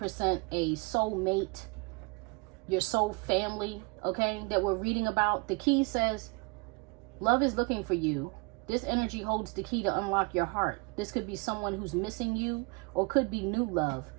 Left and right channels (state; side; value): quieter; left; 29.6 dB